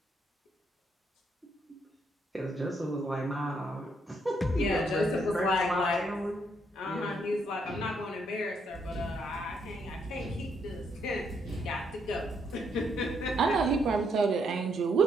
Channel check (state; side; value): normal; both; correlation 0.74